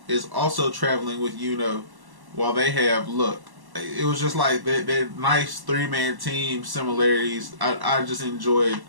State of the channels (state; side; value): late; left; 1.1 ms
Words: is also traveling with Yuno while they have Luck. It was just like that nice 3-man team similarities. I just enjoyed